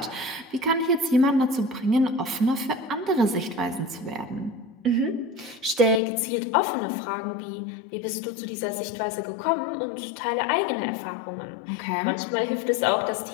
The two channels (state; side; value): drops out; right; at 6.0 s